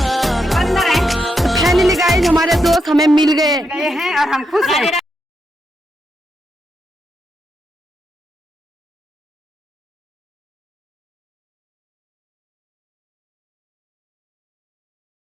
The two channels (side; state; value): both; normal; correlation 0.82